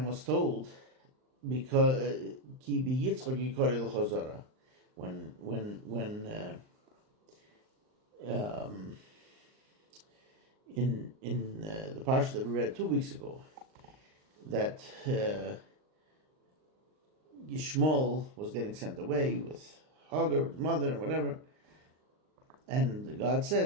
was told because when in the parsha that we read 2 weeks ago, that Yishmael was getting sent away with Hagar, his mother, and whatever, and God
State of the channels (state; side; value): late; left; 39 ms